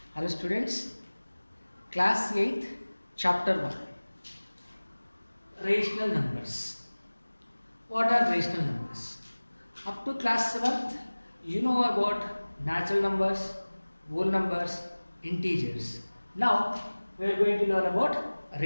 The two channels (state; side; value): inverted; both; correlation -1.00